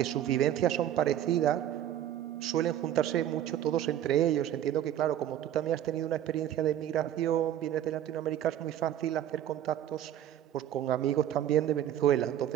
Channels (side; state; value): left; quieter; 11.3 dB